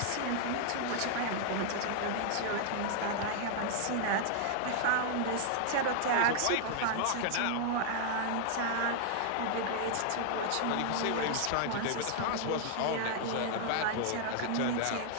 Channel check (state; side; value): different; both; correlation -0.01